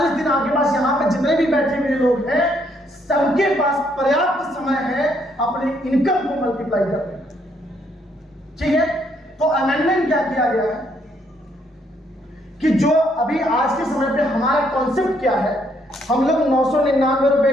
दिन आपके पास, यहाँ पे जितने भी बैठे हुए लोग हैं सबके पास पर्याप्त समय है अपने इनकम को मल्टीप्लाई करने। ठीक है, तो अमेंडमेंट क्या किया गया है कि जो अभी आज के समय पे हमारा कॉन्सेप्ट क्या है, हम लोग 999 रुपए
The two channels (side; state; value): both; normal; correlation 0.71